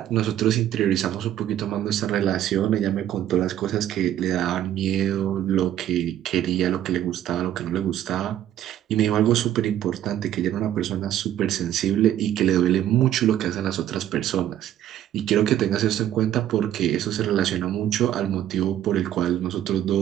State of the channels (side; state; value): left; quieter; 11.7 dB